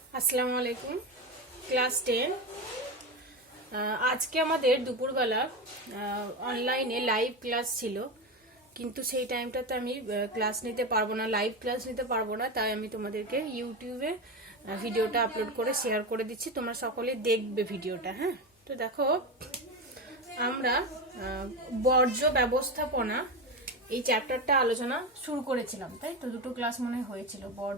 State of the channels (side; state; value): both; normal; correlation 0.18